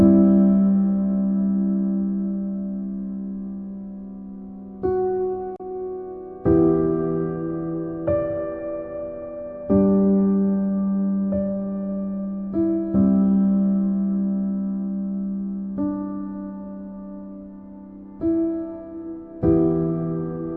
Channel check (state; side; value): identical; both; correlation 1.00